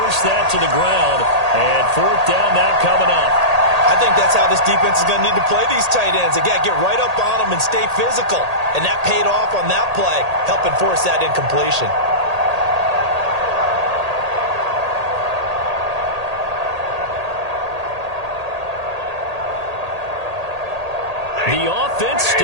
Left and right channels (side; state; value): left; late; 1.8 ms